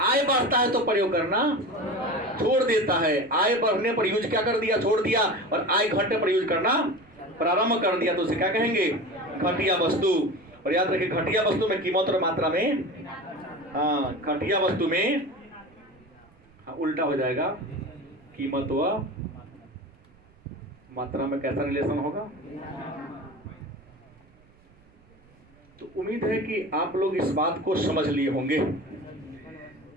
बढ़ता है तो प्रयोग करना छोड़ देता है। आय बढ़ने पर यूज क्या कर दिया? छोड़ दिया। और आय घटने पर यूज करना प्रारंभ कर दिया तो उसे क्या कहेंगे? घटिया वस्तु। और याद रखिए घटिया वस्तु में कीमत और मात्रा में, घटिया वस्तु में उल्टा हो जाएगा, कीमत व मात्रा में कैसा रिलेशन होगा? तो उम्मीद है कि आप लोग इस बात को समझ लिए होंगे।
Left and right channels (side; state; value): right; noise; rumble, 28 dB below the sound